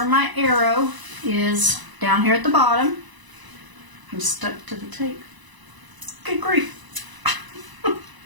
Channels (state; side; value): late; left; 1.0 ms